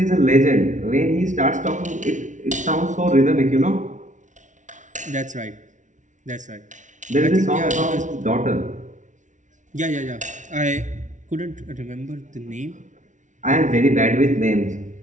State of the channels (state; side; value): late; left; 0.36 ms